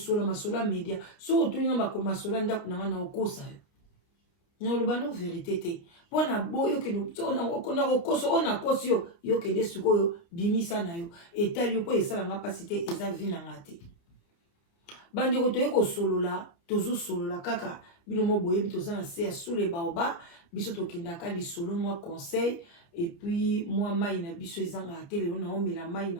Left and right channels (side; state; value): right; late; 29 ms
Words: masola media so otolinga makomasola ndaku nanga na okosa yo na olobano vérité te pona boyo keno na okoso ona kosi yo yo kende sikoyo bimisa na yo etali yo po esala nga pasi te eza vie nanga te bandeko toye kosolola tozo solola kaka bino mo boyebi toza na se sous les baobas biso tokendaka lisolo moi conseil et puis moi mai na biso ezanga te lelo na omela mai